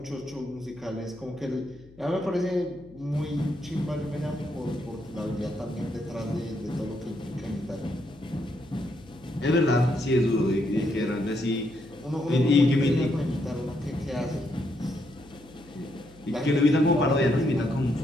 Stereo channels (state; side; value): noise; left; hum, 24 dB below the sound